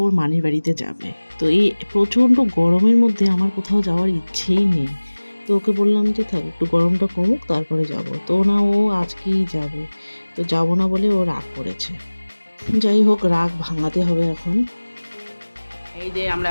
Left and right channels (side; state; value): both; inverted; correlation -1.00